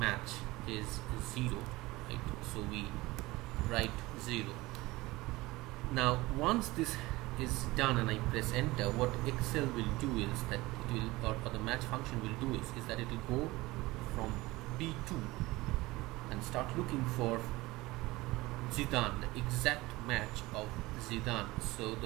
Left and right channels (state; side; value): quieter; left; 20.4 dB